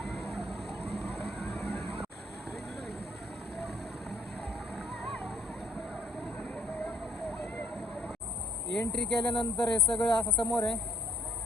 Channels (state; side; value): normal; both; correlation 0.64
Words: एंट्री केल्यानंतर हे सगळं असं समोर आहे.